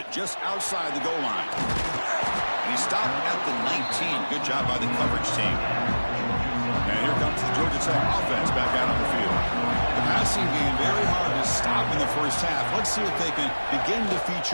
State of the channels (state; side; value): inverted; both; correlation -1.00